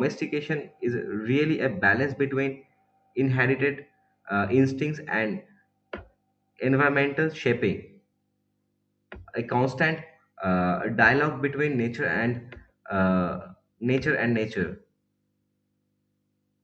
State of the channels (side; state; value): both; identical; correlation 1.00